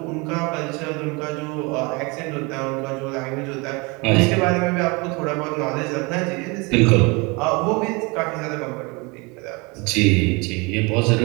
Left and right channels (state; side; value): quieter; left; 27.7 dB